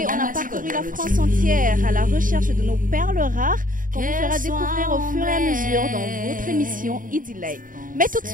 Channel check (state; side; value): late; left; 0.39 ms